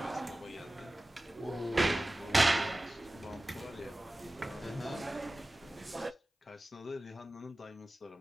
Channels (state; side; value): normal; both; correlation 0.96